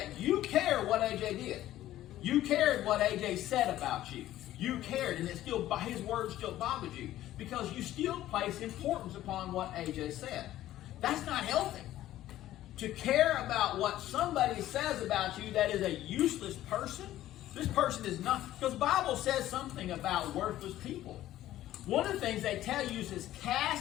you cared what AJ did. You cared what AJ said about you. You cared, and his words still bothered you, because you still place importance upon what AJ said. That's not healthy. To care about what somebody says about you that is a useless person, this person is not, because the Bible says something about worthless people. One of the things they tell you is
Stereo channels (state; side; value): quieter; right; 13.9 dB